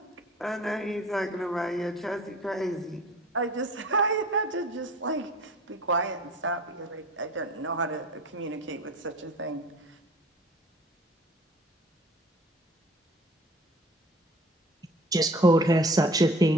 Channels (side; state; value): both; normal; correlation 0.45